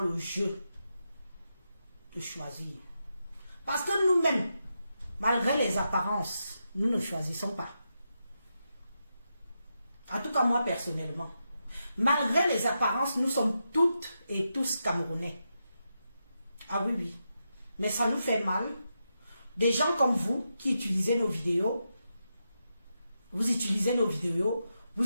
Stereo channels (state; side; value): inverted; both; correlation -0.86